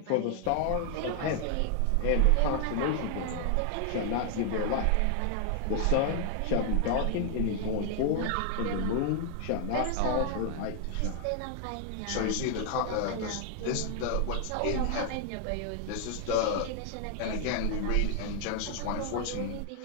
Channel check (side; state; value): both; different; correlation 0.00